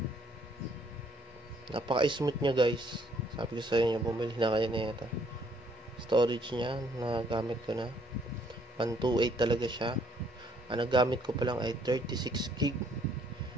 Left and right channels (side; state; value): both; normal; correlation 0.65